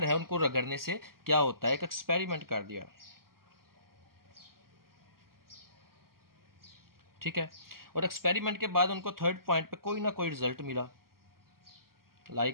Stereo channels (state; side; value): late; left; 0.92 ms